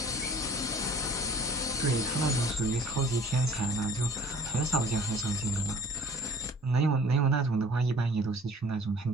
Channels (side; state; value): both; normal; correlation 0.50